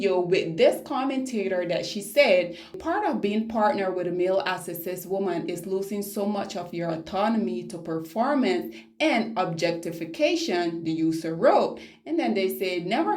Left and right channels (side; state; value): both; identical; correlation 1.00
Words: with this commentator that she said, part of being partnered with a male as a cis woman is losing so much of your autonomy to performance and objectification, the user wrote. And then they said, never